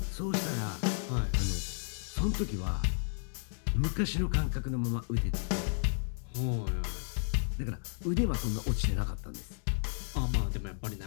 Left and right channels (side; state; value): right; silent; digital silence